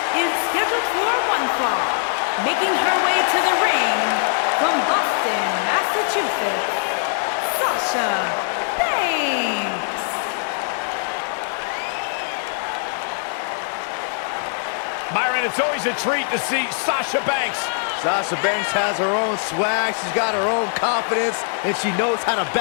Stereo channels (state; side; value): silent; right; 62 dB below the other